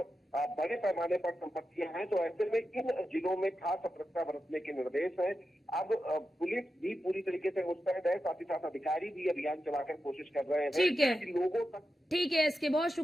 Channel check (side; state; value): both; normal; correlation 0.90